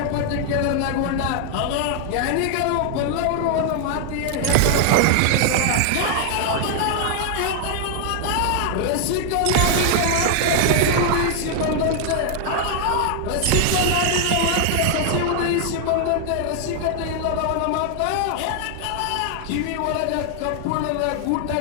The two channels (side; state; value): both; different; correlation 0.00